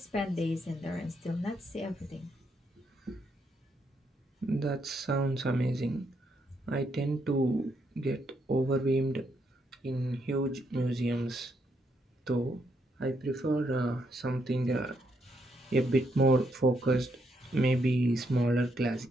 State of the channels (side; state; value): both; normal; correlation 0.76